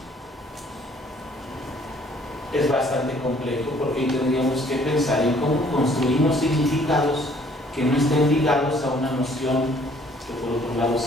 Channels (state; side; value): normal; both; correlation 0.59